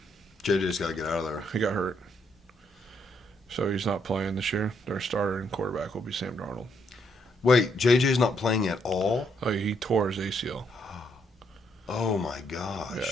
JJ's got to get out of there. He got hurt, so he's not playing this year. Their starter and quarterback will be Sam Darnold. Wait, JJ's not playing at all? Oh, he tore his ACL. Oh my gosh.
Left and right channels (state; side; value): normal; both; correlation 0.73